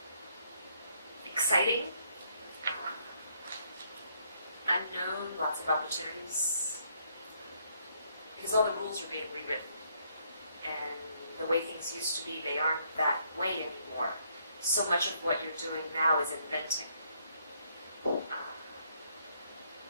Exciting, unknown, lots of opportunities, because all the rules are being rewritten, and the way things used to be, they aren't that way anymore. So much of what you're doing now is inventing.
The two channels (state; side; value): inverted; both; correlation -0.70